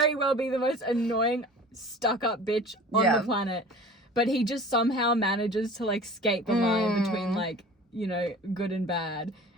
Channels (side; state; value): both; normal; correlation 0.42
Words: well be the most annoying, stuck-up bitch on the planet. But he just somehow manages to, like, skate the line between, like, you know, good and bad.